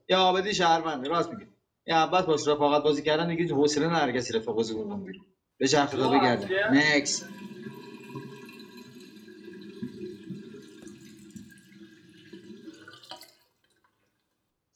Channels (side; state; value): both; identical; correlation 1.00